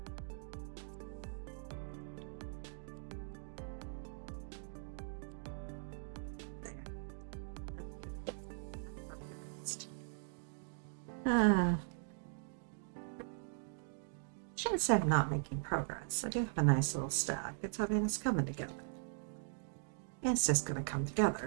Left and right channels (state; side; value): silent; left; digital silence